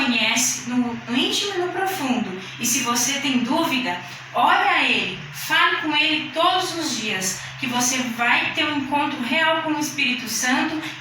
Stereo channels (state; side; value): identical; both; correlation 1.00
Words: no íntimo e no profundo. E se você tem dúvida, ore a Ele, fale com Ele todos os dias, que você vai ter um encontro real com o Espírito Santo